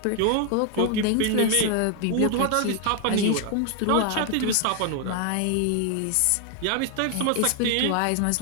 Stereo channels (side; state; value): both; different; correlation 0.00